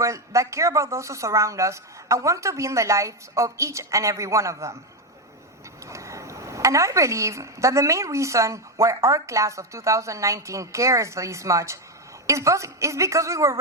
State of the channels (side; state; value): both; normal; correlation 0.08